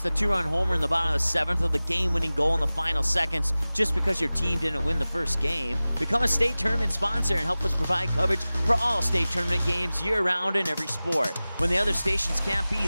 the two-run homer in the bottom of the 7th or the game-winning goal in the final seconds just because your team didn't win the first game. Become a state tournament sponsor and help us provide coverage for all state tournament games year-round in every sport. When the other stations can't be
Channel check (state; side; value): inverted; both; correlation -0.98